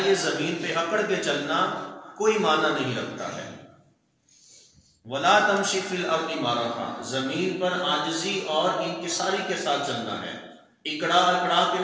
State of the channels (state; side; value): identical; both; correlation 1.00